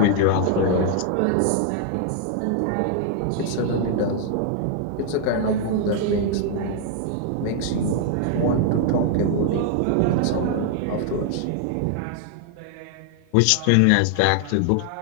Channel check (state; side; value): different; both; correlation 0.00